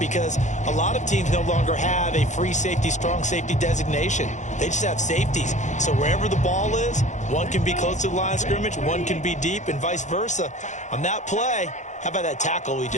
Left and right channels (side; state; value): right; late; 0.35 ms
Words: a lot of teams no longer have a free safety, strong safety designation. They just have safeties. So wherever the ball is, one can be close to the line of scrimmage, one can be deep, and vice versa. On that play, how about that tackle we